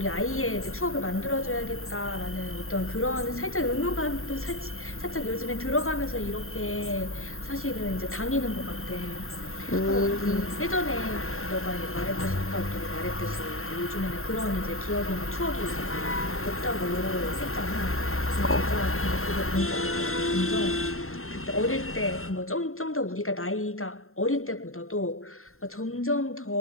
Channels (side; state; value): right; late; 0.62 ms